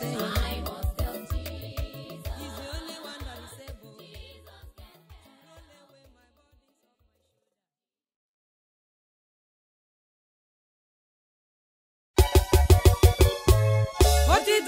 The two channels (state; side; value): identical; both; correlation 1.00